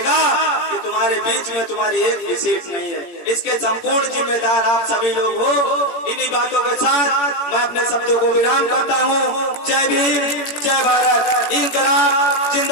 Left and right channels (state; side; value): late; right; 17 ms